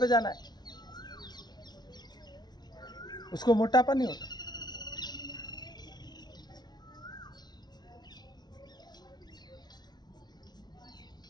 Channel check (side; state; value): right; late; 0.20 ms